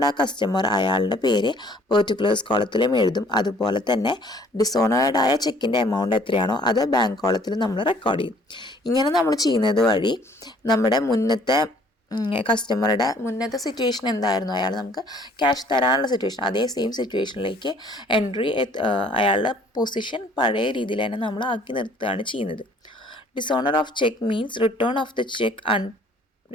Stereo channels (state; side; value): normal; both; correlation 0.57